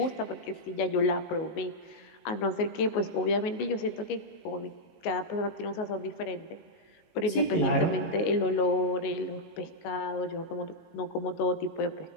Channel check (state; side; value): late; right; 18 ms